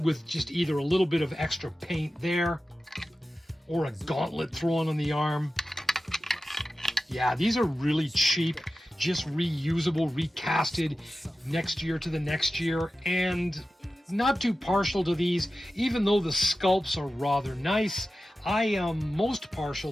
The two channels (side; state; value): both; normal; correlation 0.94